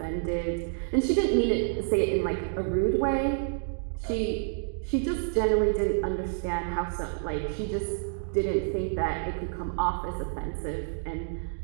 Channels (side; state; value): left; silent; digital silence